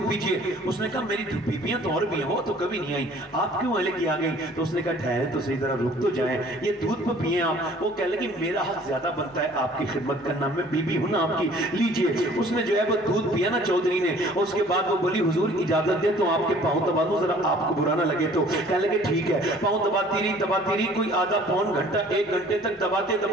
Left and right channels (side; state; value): both; normal; correlation 0.53